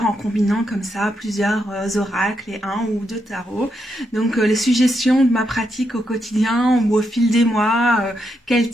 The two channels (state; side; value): normal; both; correlation 0.81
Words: en combinant comme ça plusieurs oracles et un ou deux tarots. Donc les suggestions de ma pratique au quotidien ou au fil des mois, quel